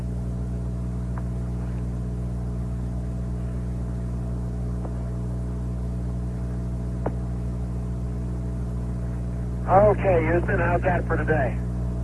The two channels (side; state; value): both; identical; correlation 1.00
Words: Okay, Houston, how's that for today?